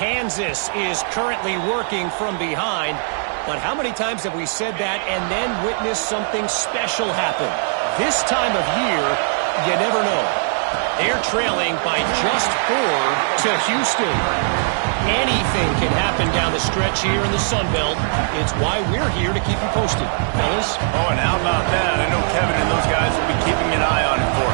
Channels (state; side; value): silent; left; 66 dB below the other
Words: is currently working from behind, but how many times have we said that and then witnessed something special happen? This time of year, you never know. They're trailing by just 4 to Houston. Anything can happen down the stretch here in the Sun Belt. It's why we're here to keep you posted, fellas. Oh, and how about that? I know Kevin and those guys will be keeping an eye on it for